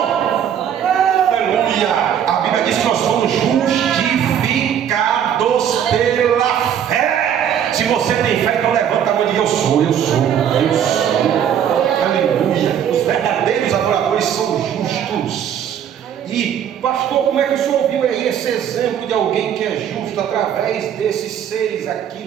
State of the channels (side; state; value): left; quieter; 9.1 dB